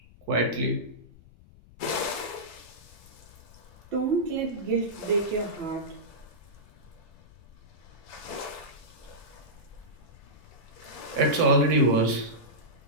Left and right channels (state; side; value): noise; left; rumble, 23 dB below the sound